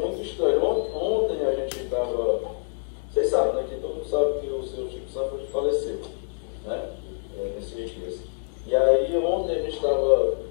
muito estranho. Ontem a gente estava, vocês sabem, né, que todo mundo sabe que o seu Chico Santos faleceu, né? Nesses dias. E aí ontem a gente estava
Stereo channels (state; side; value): silent; right; digital silence